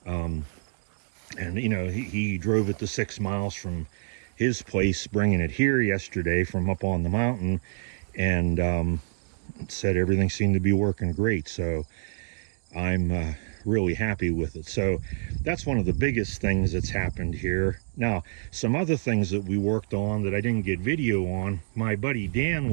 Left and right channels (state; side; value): silent; left; 60 dB below the other